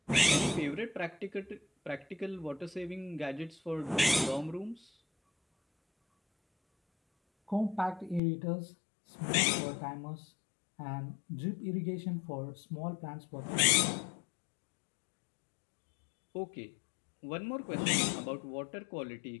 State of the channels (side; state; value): right; drops out; at 8.2 s